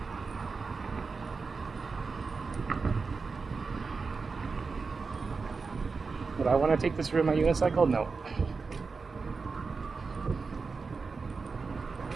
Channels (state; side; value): quieter; left; 4.6 dB